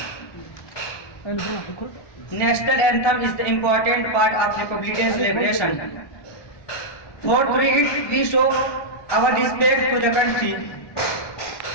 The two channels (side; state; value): right; late; 1.2 ms